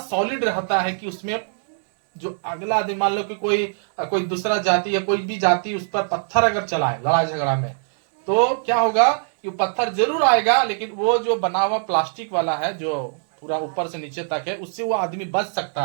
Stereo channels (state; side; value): silent; left; digital silence